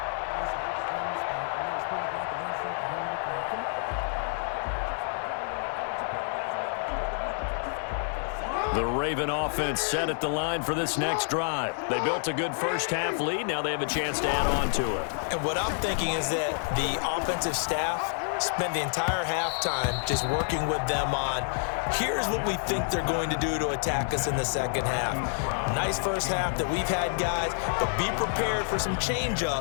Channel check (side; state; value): right; silent; 59 dB below the other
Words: The Raven offense set at the line for this next drive. They built a good first-half lead. Now they have a chance to add on to it. And what I'm thinking is that the offensive staff spent the entire halftime just working with them on, here's what we think they're going to do to attack us in the second half. Nice first half that we've had, guys, but be prepared for some